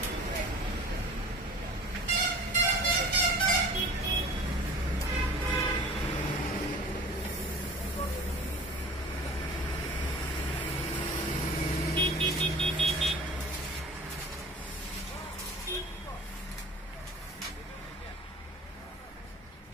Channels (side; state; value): both; normal; correlation 0.43